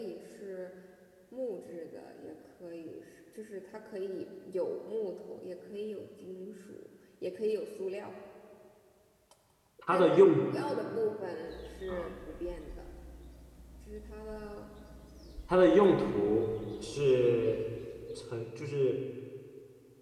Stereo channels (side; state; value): both; identical; correlation 1.00